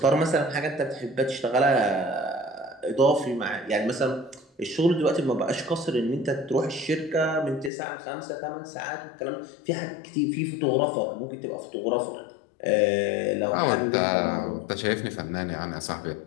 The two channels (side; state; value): right; drops out; at 7.7 s